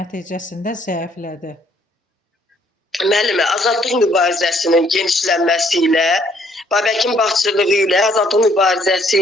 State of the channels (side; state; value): both; normal; correlation 0.65